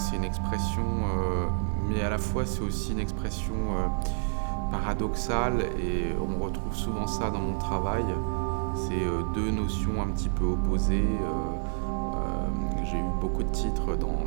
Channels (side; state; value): left; silent; 59 dB below the other